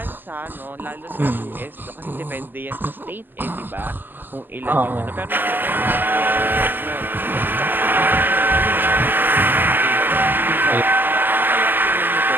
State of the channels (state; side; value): late; left; 0.094 ms